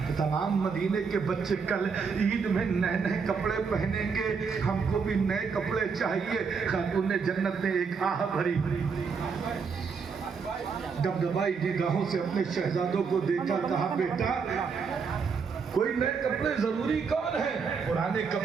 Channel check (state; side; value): quieter; left; 5.6 dB